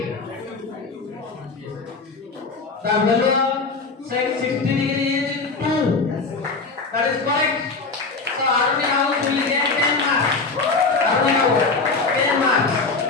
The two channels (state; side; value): quieter; right; 4.1 dB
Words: The value of sec 60 degree is 2. That is correct. So army house will get 10 marks. Army house 10 marks.